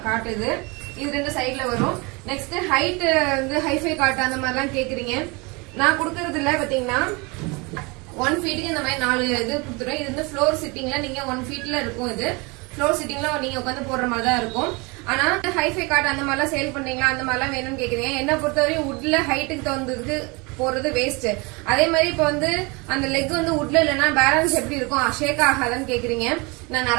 கார்ட் இது 2 சைட்ல வரும். நெக்ஸ்ட் ஹைட் வந்து ஹைஃபை கார்ட் அந்த மாதிரிலாம் கேக்குறீங்க. நான் கொடுக்கறது இல்ல பாத்தீங்கன்னா 1 ஃபீட்டுக்கு இந்த மாதிரி 4 இது கொடுத்துருவேன். இது வந்து ஃப்ளோர் சிட்டிங்ல நீங்க 1 ஃபீட்ல இருக்கும். இது ஃப்ளோர் சிட்டிங்ல நீங்க உட்காந்து போடுற மாதிரி தான் இருக்கும். ஆனா ஹைஃபை கார்ட் அந்த மாதிரிலாம் சேல் பண்ணீங்களா அந்த மாதிரிலாம் வேணும்னு கேக்குறீங்க. என்ன பொறுத்தவரையும் வுட்ல ஹைட்டுக்கு தகுந்ததுக்கு போறது வேஸ்ட். அதே மாதிரி இப்ப வந்து அந்த லெக் வந்து வுட்ல இல்லைன்னா பேலன்ஸ் எப்படி இருக்கும், ஷேக் ஆகாதான்னு கேக்குறீங்க. நான்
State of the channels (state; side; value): quieter; left; 27.6 dB